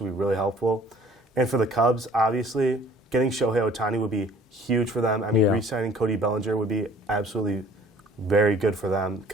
be really helpful. And for the Cubs, obviously, getting Shohei Ohtani would be huge for them. I mean, re-signing Cody Bellinger would be absolutely very good for them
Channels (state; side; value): normal; both; correlation 0.53